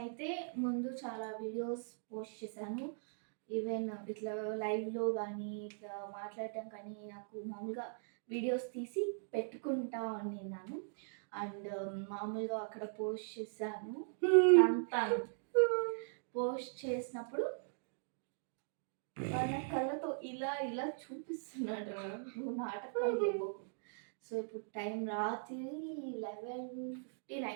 ముందు చాలా వీడియోస్ పోస్ట్ చేశాను. ఈవెన్ ఇట్లా లైవ్లో కానీ ఇట్లా మాట్లాడటం కానీ నాకు మామూలుగా వీడియోస్ తీసి పెట్టుకుంటా ఉన్నాను. అండ్ మామూలుగా అక్కడ పోస్ట్ చేశాను. పోస్ట్ చేసినప్పుడు వాళ్ళ కళ్ళతో ఇలా ఇలా చూపిస్తున్నాడు, నువ్వు నాటకాలు. సో ఇప్పుడు టైం రాత్రి 11:15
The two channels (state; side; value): silent; left; digital silence